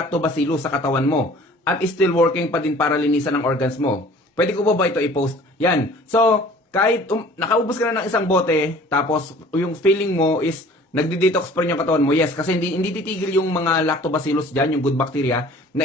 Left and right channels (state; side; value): normal; both; correlation 0.49